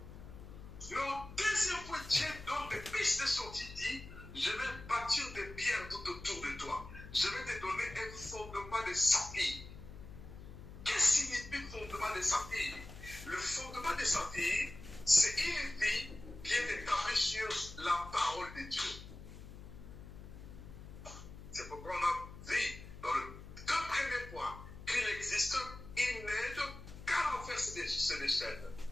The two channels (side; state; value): left; noise; hum, 14 dB below the sound